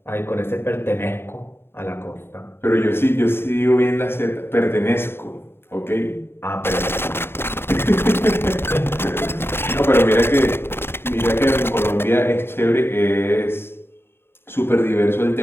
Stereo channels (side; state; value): right; late; 0.11 ms